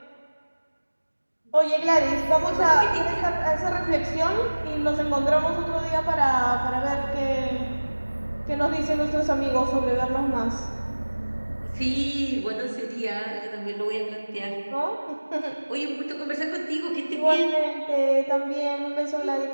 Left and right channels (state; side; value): inverted; both; correlation -1.00